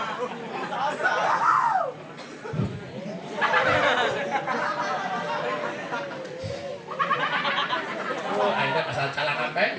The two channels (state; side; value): identical; both; correlation 1.00